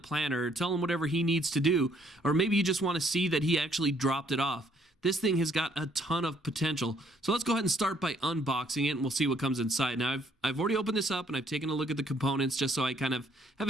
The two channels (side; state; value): both; normal; correlation 0.65